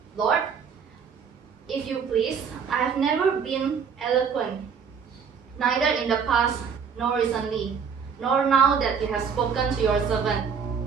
Lord, if you please, I have never been eloquent, neither in the past nor recently, nor now that you have spoken to your servant.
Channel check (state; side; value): quieter; left; 6.5 dB